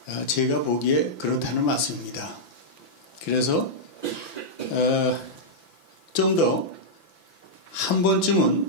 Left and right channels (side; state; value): right; late; 5.9 ms